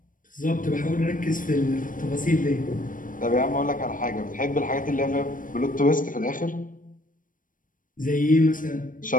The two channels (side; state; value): right; late; 0.39 ms